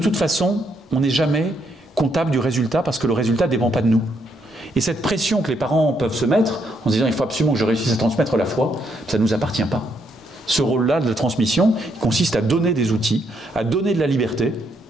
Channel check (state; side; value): normal; both; correlation 0.75